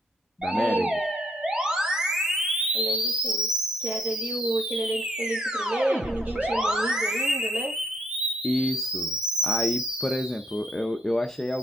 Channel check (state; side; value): normal; both; correlation 0.70